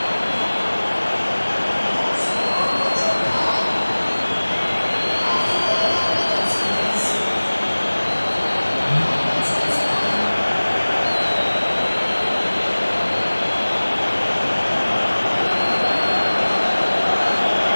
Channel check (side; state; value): both; inverted; correlation -1.00